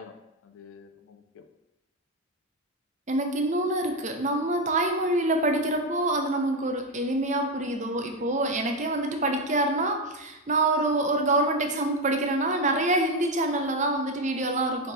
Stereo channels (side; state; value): both; normal; correlation 0.09